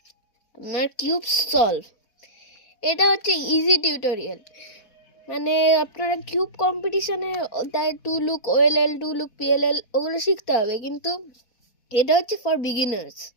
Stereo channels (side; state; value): right; late; 4.1 ms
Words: আপনার কিউব সলভ। এটা হচ্ছে ইজি টিউটোরিয়াল, মানে আপনারা কিউব কম্পিটিশনে তাই two look OLL, two look PLL ওগুলো শিখতে হবে, কিন্তু এটা হচ্ছে for beginners.